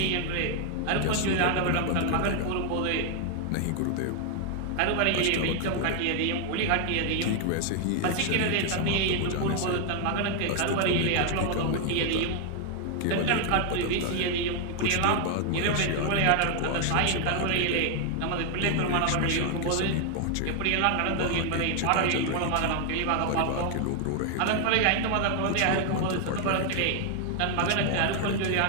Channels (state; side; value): different; both; correlation 0.00